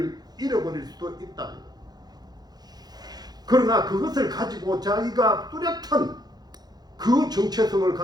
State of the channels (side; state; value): left; late; 0.19 ms